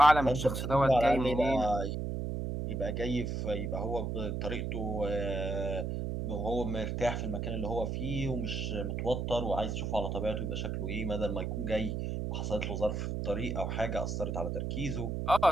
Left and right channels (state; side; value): noise; right; hum, 2 dB below the sound